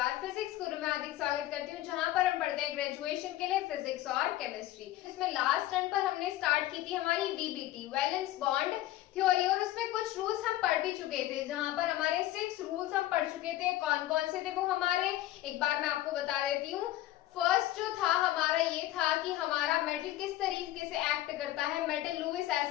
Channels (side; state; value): right; quieter; 14.9 dB